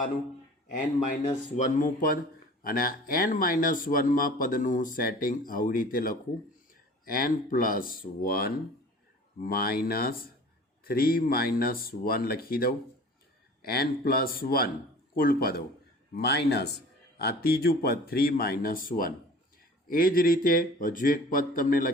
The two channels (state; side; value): normal; both; correlation 0.44